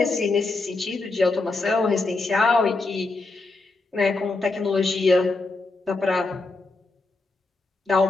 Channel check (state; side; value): quieter; right; 3.4 dB